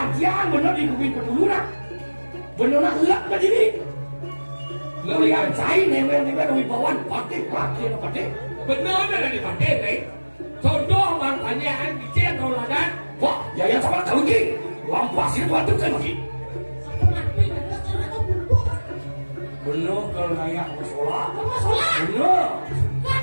benar di kuping peduluran. Benar nak lak dah diri. Lihat saya newer wibawan pati pati. Benar ada di pakai nih. Contoh makanya dicek tauladan. Wah, ya yang sama kau lagi. Lampas itu ada kan lagi. Benar kalau layak masalah. Benar.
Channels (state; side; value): inverted; both; correlation -1.00